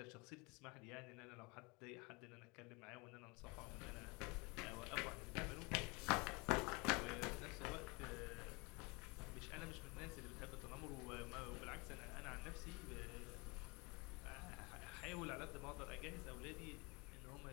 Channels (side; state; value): right; quieter; 27.9 dB